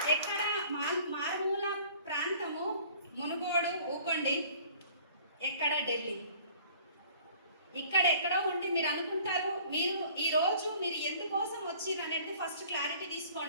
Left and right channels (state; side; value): inverted; both; correlation -0.52